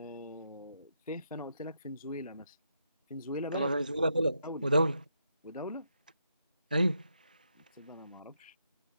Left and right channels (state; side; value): inverted; both; correlation -0.80